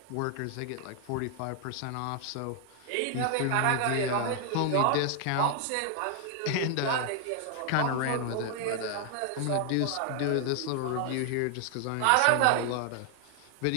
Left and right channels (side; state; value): both; different; correlation 0.00